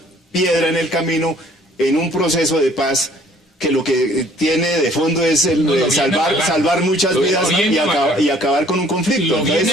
piedra en el camino en un proceso de paz que lo que tiene de fondo es salvar muchas vidas y acabar con un conflicto. Lo viene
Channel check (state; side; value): normal; both; correlation 0.57